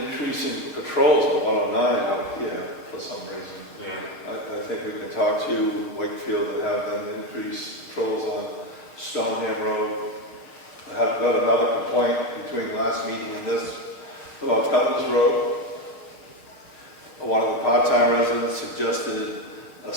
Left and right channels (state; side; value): late; right; 6.4 ms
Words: patrols on 109 out here for some reason. Yeah. I think we can talk to Wakefield and have them increase patrols on Stoneham Road. I have got another complaint between last meeting and this about Cutler's Road. One of the part-time residents suggested a